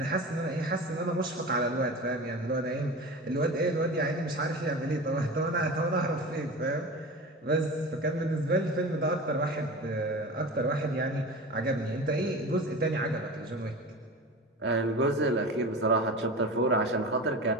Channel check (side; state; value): both; normal; correlation 0.31